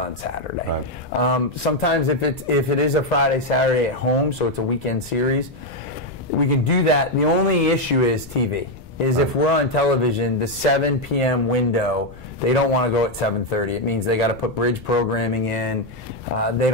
Saturday. Right. Sometimes if it is a Friday, Saturday at home, so it's a weekend series, we can do that. The only issue is TV. If we're on television, the 7 p.m. window, they don't want to go at 7:30. It means they got to put bridge programming in. They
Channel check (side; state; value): left; noise; rumble, 18 dB below the sound